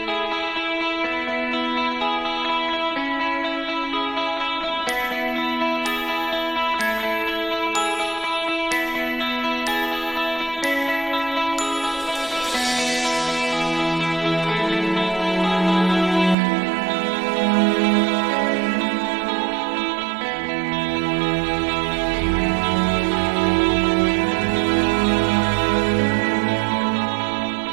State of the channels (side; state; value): left; drops out; at 16.4 s